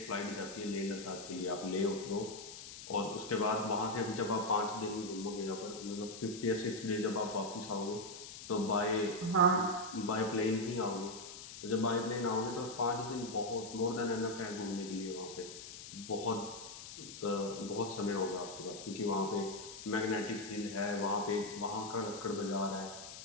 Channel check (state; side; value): noise; left; hiss, 12 dB below the sound